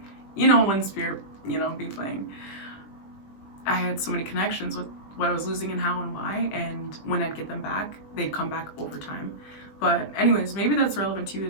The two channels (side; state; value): right; late; 20 ms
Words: you know, when spirit, you know, be playing, I had so many connections with what I was losing and how and why, and when I'd get them back, they'd come back over time. But anyways, maybe that's relevant to you,